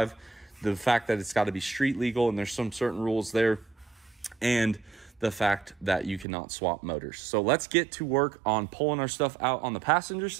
the fact that it's got to be street legal and there's some certain rules there, and the fact that you cannot swap motors. So let's get to work on pulling our stuff out on the passenger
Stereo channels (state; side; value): drops out; left; at 6.2 s